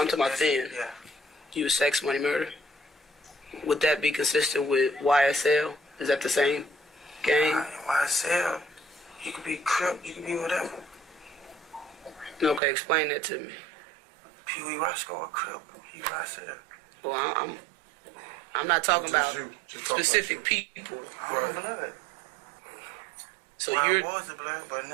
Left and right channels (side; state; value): left; drops out; at 12.6 s